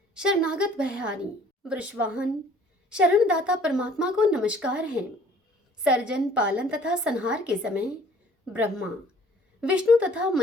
शरणागत भयहारी, वृषवाहन, शरणदाता परमात्मा को नमस्कार है। सर्जन, पालन तथा संहार के समय ब्रह्मा, विष्णु तथा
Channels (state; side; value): normal; both; correlation 0.56